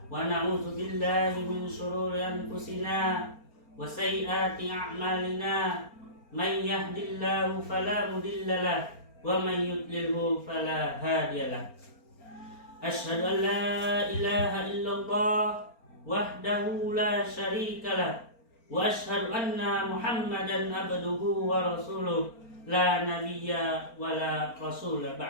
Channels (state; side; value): late; right; 4.4 ms